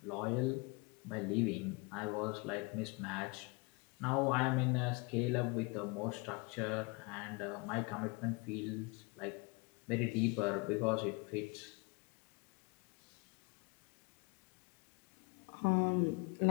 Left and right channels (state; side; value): quieter; right; 28.5 dB